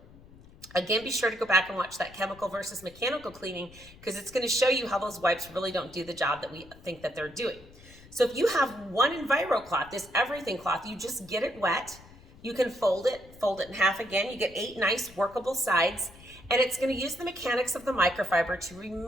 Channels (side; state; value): left; noise; rumble, 22 dB below the sound